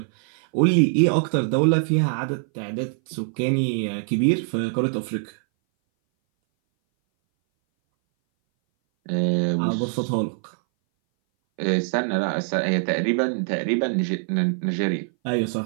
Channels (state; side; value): silent; left; 60 dB below the other